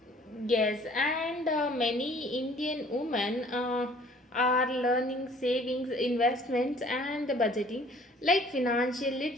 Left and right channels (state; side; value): normal; both; correlation 0.54